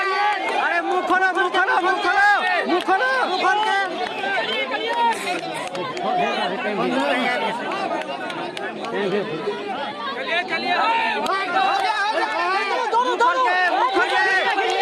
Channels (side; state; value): both; identical; correlation 1.00